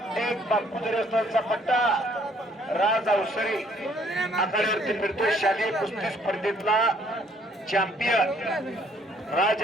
एक बापूदरी रस्तोदांचा पट्टा, राज अवसरे आखाड्यावरती फिरतोय. शालेय कुस्ती स्पर्धेतला चॅम्पियन राज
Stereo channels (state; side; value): normal; both; correlation 0.63